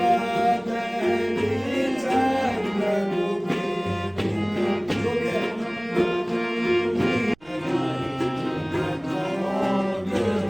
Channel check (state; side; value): noise; right; rumble, 28 dB below the sound